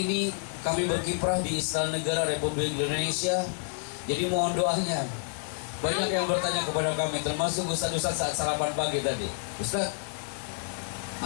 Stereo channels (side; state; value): right; silent; digital silence